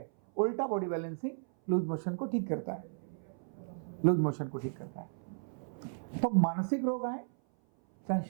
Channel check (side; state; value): left; silent; 55 dB below the other